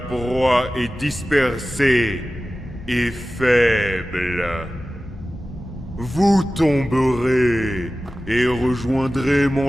est dispersée et faible. Vous tomberez et rejoindrez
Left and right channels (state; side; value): normal; both; correlation 0.95